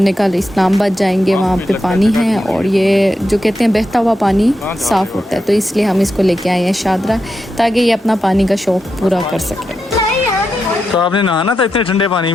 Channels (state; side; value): normal; both; correlation 0.87